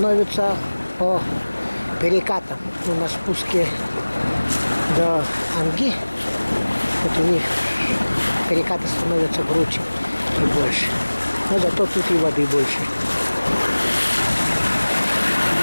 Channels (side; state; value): both; inverted; correlation -1.00